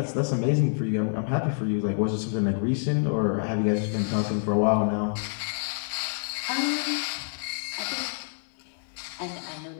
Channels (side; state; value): right; silent; digital silence